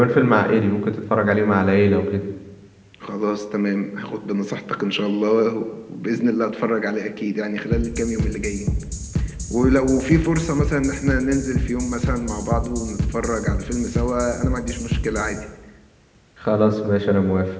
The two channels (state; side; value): identical; both; correlation 1.00